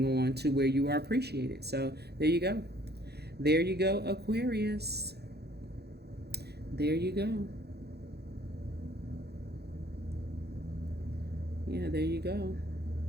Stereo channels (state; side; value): late; left; 0.48 ms